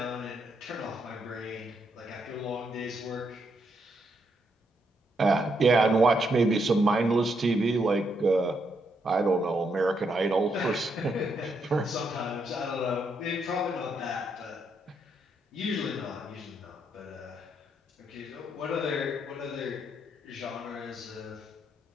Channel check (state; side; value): normal; both; correlation 0.77